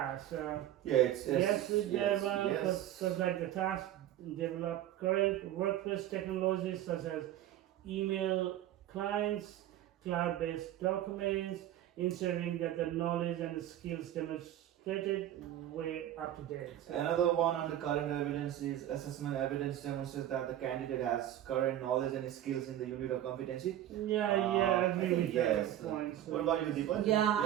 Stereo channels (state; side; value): quieter; left; 12.3 dB